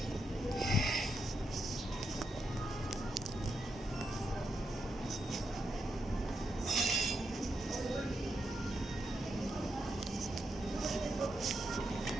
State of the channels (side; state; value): both; normal; correlation 0.83